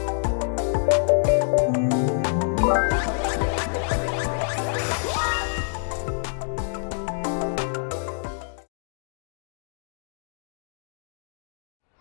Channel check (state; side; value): silent; right; digital silence